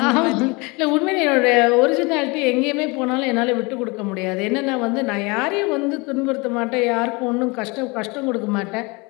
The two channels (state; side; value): quieter; right; 27.3 dB